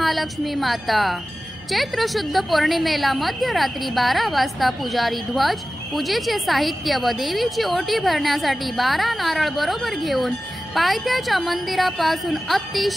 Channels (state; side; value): noise; right; hum, 27 dB below the sound